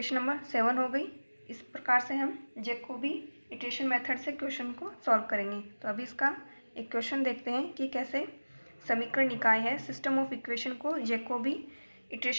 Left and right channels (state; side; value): inverted; both; correlation -1.00